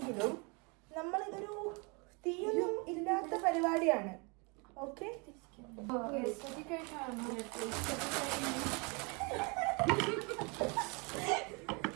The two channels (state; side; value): quieter; left; 31.3 dB